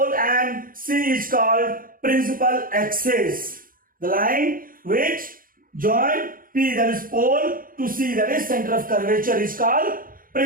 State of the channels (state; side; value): late; left; 0.41 ms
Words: and C is called principal axis. The line which join P, that is pole, to C, that is center of curvature, is called